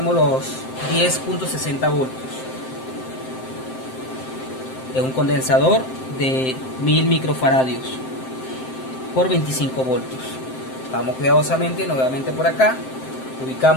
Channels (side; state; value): right; late; 7.7 ms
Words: los 10.60 voltios. Es un condensador de 1000 microfaradios por 25 voltios. Vamos cuidadosamente nuevamente por acá,